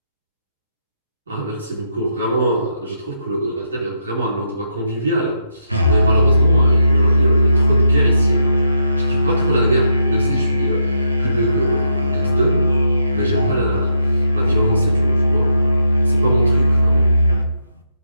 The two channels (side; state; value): both; inverted; correlation -0.81